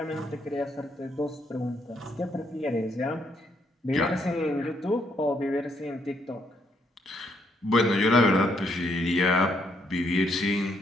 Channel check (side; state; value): both; normal; correlation 0.73